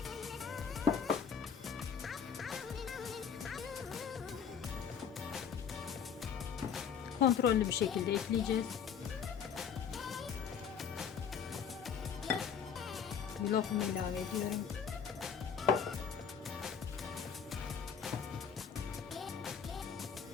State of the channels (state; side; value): quieter; right; 7.2 dB